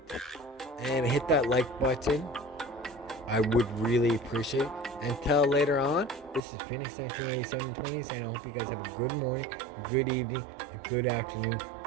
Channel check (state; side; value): drops out; left; at 6.4 s